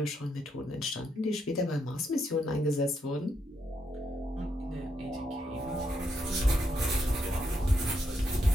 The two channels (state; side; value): normal; both; correlation 0.79